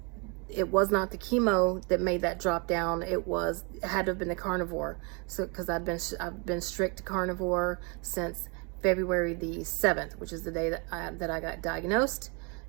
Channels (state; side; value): quieter; left; 33.2 dB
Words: it was not the chemo that made that drop down. It had to have been the carnivore. So, cause I've been strict carnivore since February the 7th, which is the day that I got diagnosed.